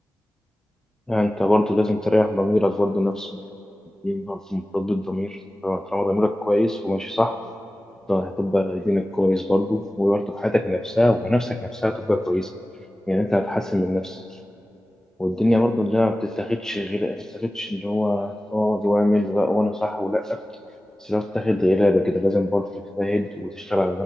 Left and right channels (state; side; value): normal; both; correlation 0.96